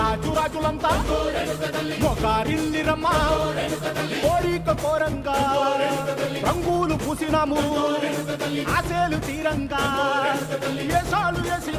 రాజులంతా మొగారిల్లిరమ్మా కోరిక కోరంగా రంగులు పూసినాము ఆశలు తీరంగా ఏసాలు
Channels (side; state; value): both; identical; correlation 1.00